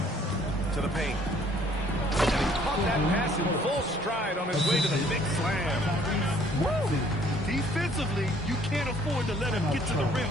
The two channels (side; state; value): both; normal; correlation 0.59